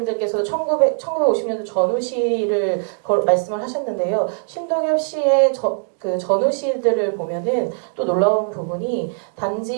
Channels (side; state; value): left; silent; digital silence